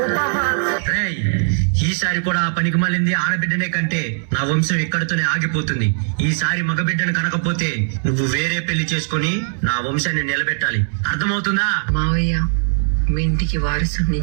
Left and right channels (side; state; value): left; silent; 66 dB below the other